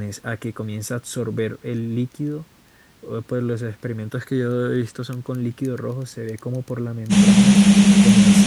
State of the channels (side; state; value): both; identical; correlation 1.00